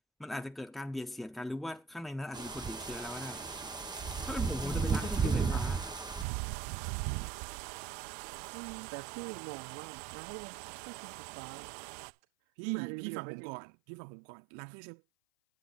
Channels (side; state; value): left; drops out; at 6.2 s